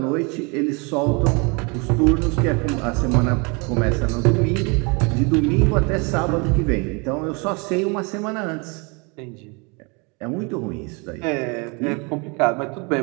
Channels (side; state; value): left; quieter; 31.0 dB